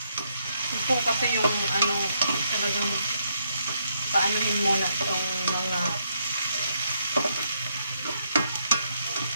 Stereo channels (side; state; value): both; inverted; correlation -0.76